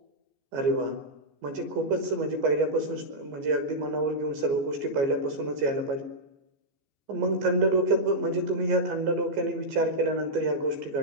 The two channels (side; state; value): left; late; 15 ms